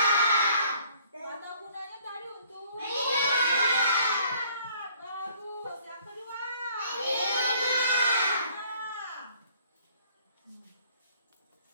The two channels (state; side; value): inverted; both; correlation -0.60